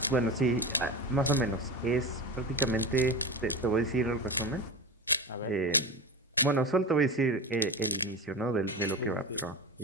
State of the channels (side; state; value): both; normal; correlation 0.25